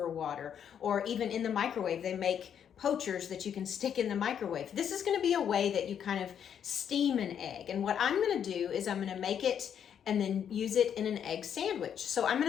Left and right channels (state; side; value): quieter; right; 8.6 dB